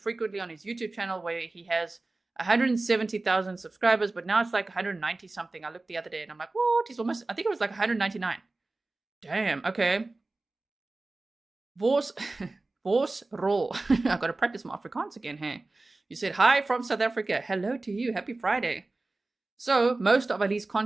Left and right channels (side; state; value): left; quieter; 3.2 dB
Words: on his YouTube channel where he has 170,000 subscribers, but now it's like 190 something. I looked the other day and I'm like, what? He's almost, I think it was like 199. Damn, okay. Vos roll. I've got to practice my Afrikaans again, hey. You said, hi from South Africa. Hello to you. Happy Friday. So, most of Ali's